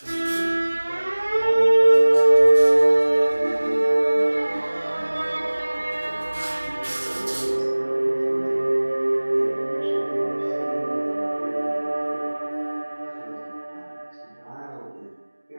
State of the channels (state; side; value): inverted; both; correlation -1.00